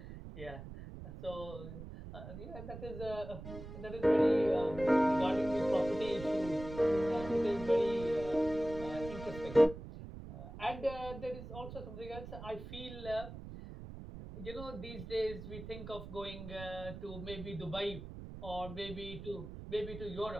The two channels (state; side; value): noise; right; rumble, 11 dB below the sound